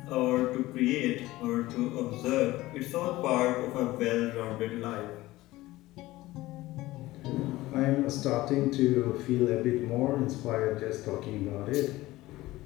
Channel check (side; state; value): right; quieter; 17.9 dB